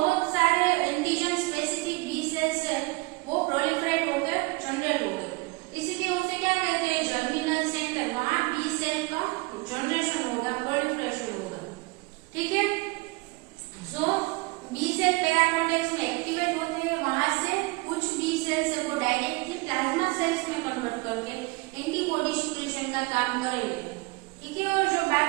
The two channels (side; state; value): left; quieter; 24.8 dB